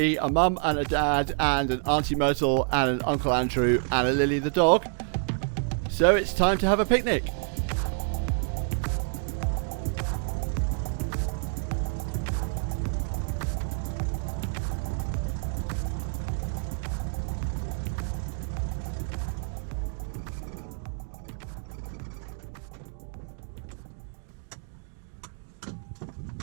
a mum and a dad and an Auntie Myrtle and an Uncle Andrew and a Lily the dog. So it's time to have a picnic.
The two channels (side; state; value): left; silent; 59 dB below the other